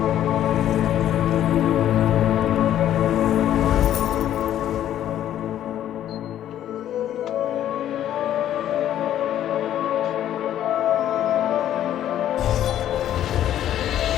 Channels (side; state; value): right; quieter; 11.5 dB